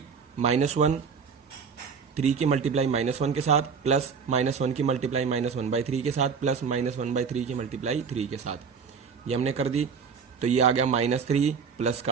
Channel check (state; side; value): quieter; left; 6.0 dB